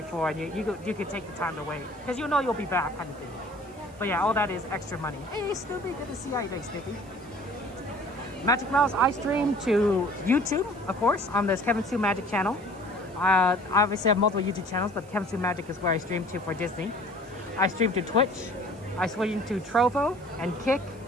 and you could take the time to wait because you'll be back kind of thing. But yeah, all that is extra money. Hey Snoopy, good to see you. How you doing, Snoopy? Magic Mouse, I stream to YouTube, of course, on this Kevin Sue Magic channel. Obviously, I have multiple YouTube channels, but Chemistry Magic is where I stream to for Disney. I stream to Twitch. I stream to Trovo and Kick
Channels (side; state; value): right; noise; hiss, 27 dB below the sound